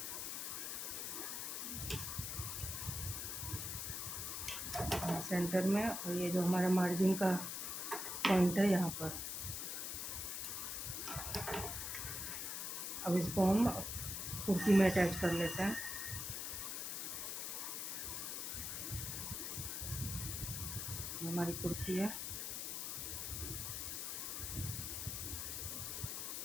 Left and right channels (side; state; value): left; noise; hiss, 3 dB below the sound